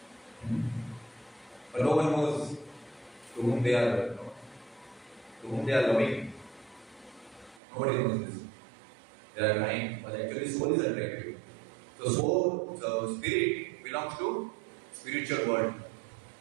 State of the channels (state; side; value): drops out; left; at 7.6 s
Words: But no one knows to whom they are loving. Nobody knows this. They are crying, but actually soul is attractive. So spirit belongs to spiritual world,